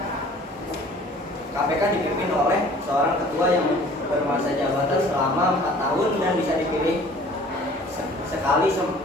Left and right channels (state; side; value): normal; both; correlation 0.50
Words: KPK dipimpin oleh seorang ketua yang bermasa jabatan selama 4 tahun dan bisa dipilih sekali